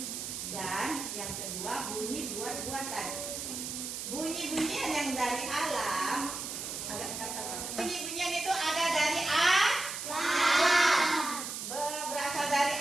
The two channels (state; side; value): noise; right; hiss, 6 dB below the sound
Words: dan yang kedua bunyi buat-buatan. Bunyi-bunyian yang dari alam, bunyi-bunyian itu ada dari alam. Berasal dari